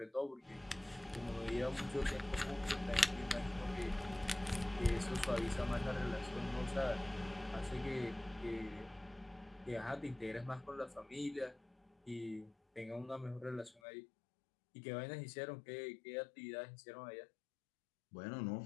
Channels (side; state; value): right; drops out; at 13.8 s